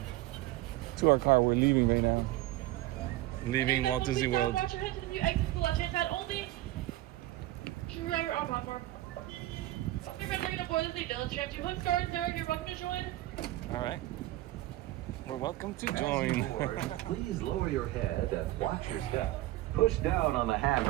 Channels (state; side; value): quieter; left; 16.5 dB